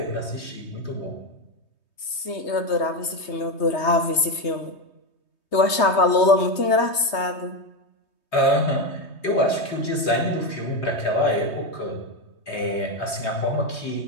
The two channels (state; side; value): late; right; 3.2 ms